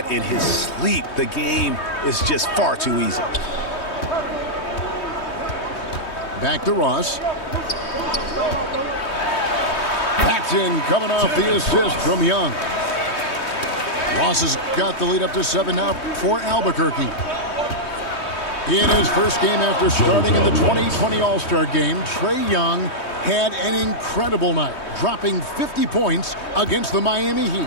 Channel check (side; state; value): right; late; 3.2 ms